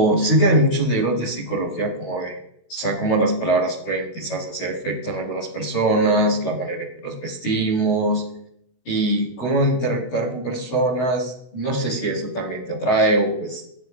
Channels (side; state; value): right; late; 16 ms